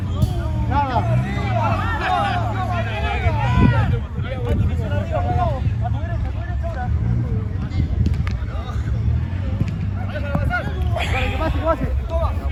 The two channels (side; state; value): both; identical; correlation 1.00